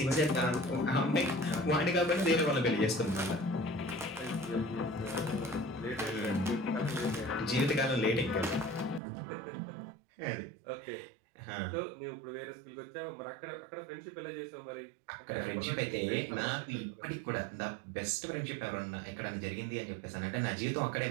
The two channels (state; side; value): drops out; left; at 9.0 s